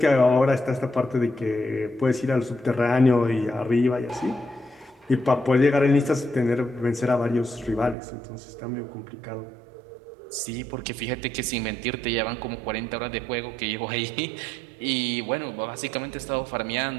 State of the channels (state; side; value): drops out; left; at 8.0 s